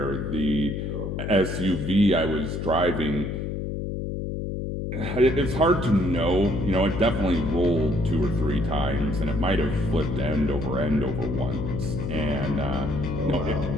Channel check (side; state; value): left; noise; hum, 3 dB below the sound